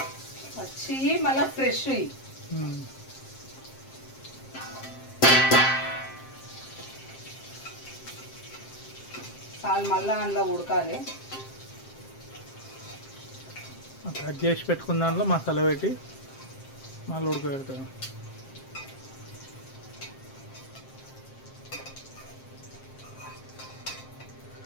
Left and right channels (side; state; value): right; late; 7.6 ms